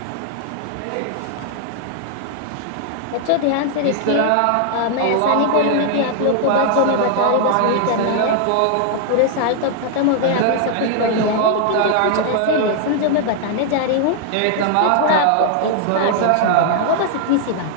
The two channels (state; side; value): different; both; correlation 0.00